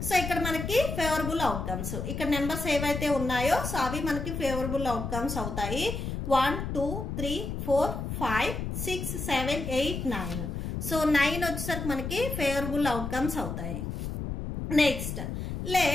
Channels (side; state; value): left; noise; rumble, 4 dB below the sound